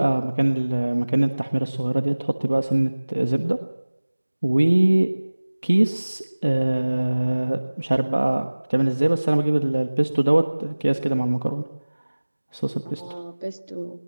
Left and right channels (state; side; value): inverted; both; correlation -1.00